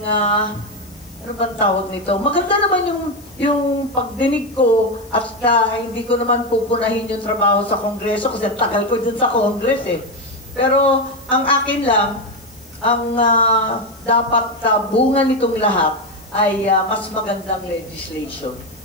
ano bang tawag nito? Maganda naman yung pagdinig ko at hindi ko naman pupunahin yung trabaho sa Kongreso kasi tagal ko dun sa Congress eh. Pero ang akin lang, ang dapat bunga nitong lahat ay mas magandang legislation.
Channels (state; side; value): noise; left; hiss, 27 dB below the sound